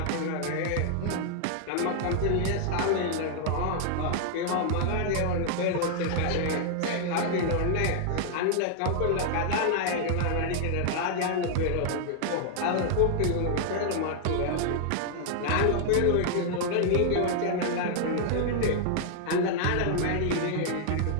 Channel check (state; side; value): different; both; correlation 0.00